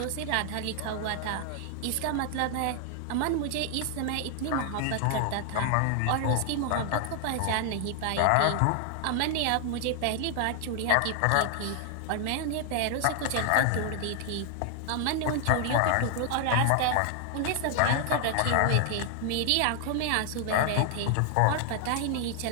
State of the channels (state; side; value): different; both; correlation 0.00